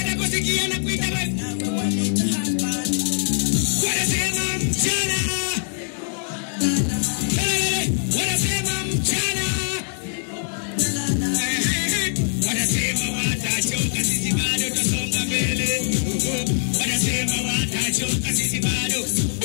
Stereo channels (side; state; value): right; silent; 64 dB below the other